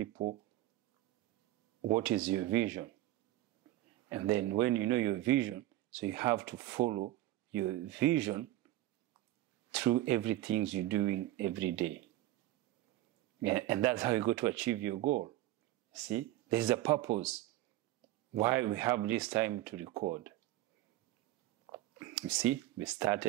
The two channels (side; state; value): left; quieter; 15.5 dB